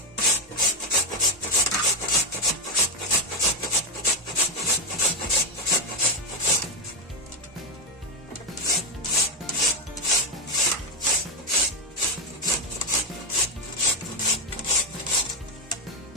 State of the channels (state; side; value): normal; both; correlation 0.08